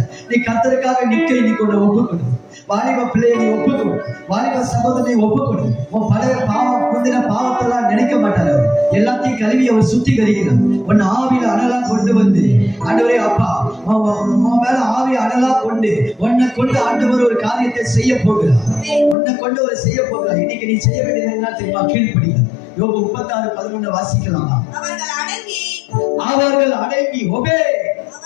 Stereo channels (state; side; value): drops out; right; at 19.2 s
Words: நீ கர்த்தருக்காக நிற்க இன்னைக்கு உன்னை ஒப்புக்கொடு. வாலிப பிள்ளையை நீ ஒப்புக்கொடு. வாலிப சகோதரனை ஒப்புக்கொடு. உன் பழைய பாவம் முந்தின பாவத்தெல்லாம் நினைக்க மாட்டார். எல்லாத்தையும் கழுவி அவர் சுத்திகரிக்கிறார். உன் ஆவியில அனலா கொண்டு வந்து ஆண்டவரே அப்பா உன் மேல ஆவி அனலா கொண்டு உன்னை கொண்டு ஆண்டவர் ஒரு காரியத்தை செய்ய போகிறார். உன்னை கொண்டு ஒரு செய்ய போகிறார். இன்னைக்கு நீ செய்ய வேண்டியது என்ன தெரியுமா? கீழ்ப்படிங்க. யோபு 36:11 வாசிக்கலாமா? அவர்கள் அடங்கி ஒபே